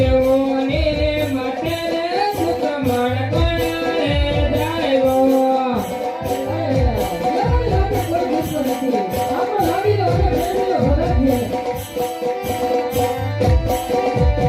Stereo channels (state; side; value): identical; both; correlation 1.00